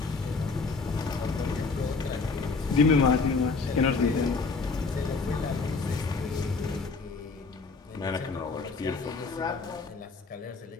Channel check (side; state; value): right; quieter; 4.3 dB